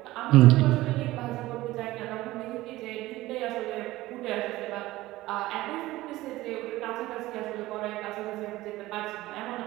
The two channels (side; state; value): left; quieter; 17.6 dB